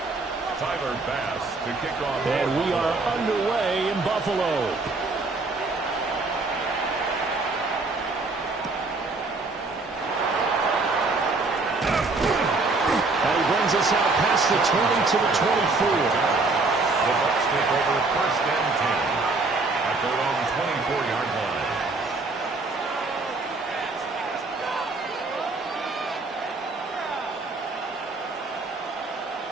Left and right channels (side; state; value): left; quieter; 3.6 dB